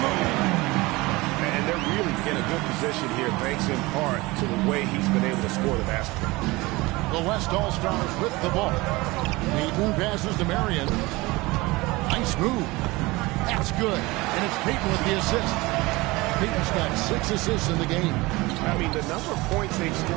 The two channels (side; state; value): left; quieter; 22.1 dB